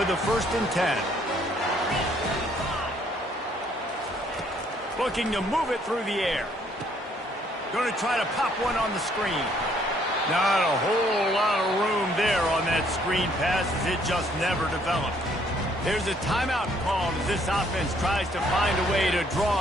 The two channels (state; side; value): normal; both; correlation 0.65